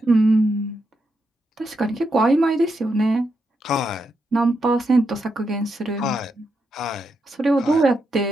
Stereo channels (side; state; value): both; normal; correlation 0.83